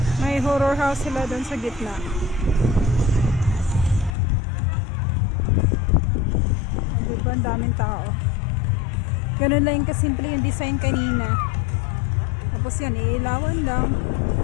May horror house sila doon sa gitna. Diba? Ang daming tao. Ganun lang yung kasimple yung design kanina. Tapos yan, iilawan lang.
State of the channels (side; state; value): right; drops out; at 4.1 s